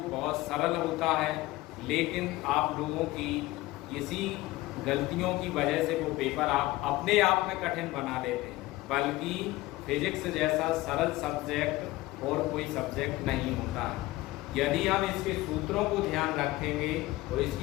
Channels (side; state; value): right; quieter; 18.5 dB